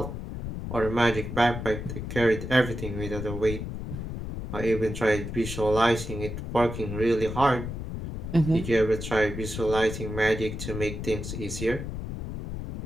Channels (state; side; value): noise; left; rumble, 6 dB below the sound